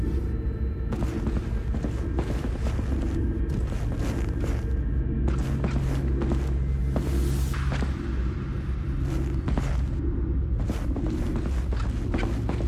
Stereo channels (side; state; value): both; identical; correlation 1.00